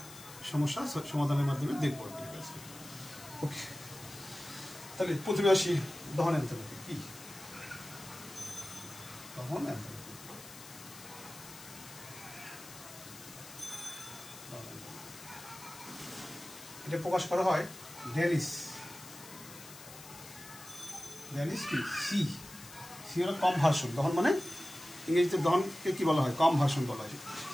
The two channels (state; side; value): noise; left; hiss, 16 dB below the sound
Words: সমস্যা সমাধানের মাধ্যমে দেখব। ওকে, তাহলে প্রথমে আসি দহন এনথালপি কি। দহন এনথালপি এটা প্রকাশ করা হয় ড্যালিস কি সি হলো কনভার্সন। দহন মানে ইংরেজিতে দহনকে কি বলা হয়, কনভার্সন বলা হয়,